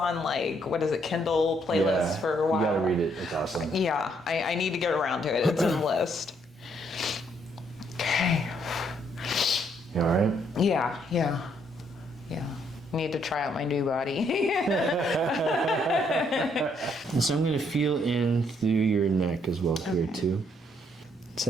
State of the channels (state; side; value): normal; both; correlation 0.71